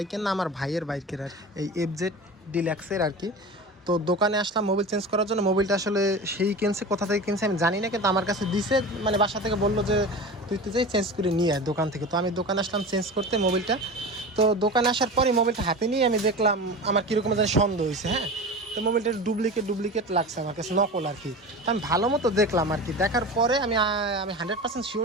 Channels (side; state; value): both; normal; correlation 0.31